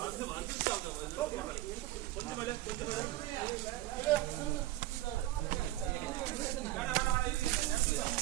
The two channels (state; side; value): quieter; left; 15.6 dB